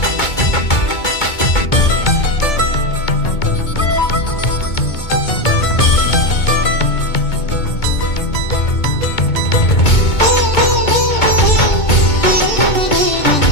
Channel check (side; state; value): right; late; 2.2 ms